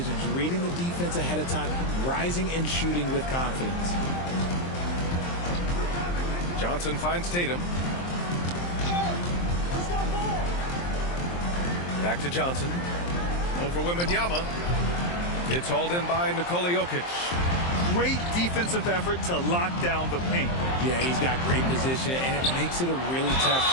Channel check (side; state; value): right; late; 23 ms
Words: reading the defense ahead of time, rising and shooting with confidence. Johnson finds Tatum. Back to Johnson. Over Wembanyama. It's hauled in by Nikola Jokic. great defensive effort to lock down the paint. Yeah, he's got great position, and it makes it a really tough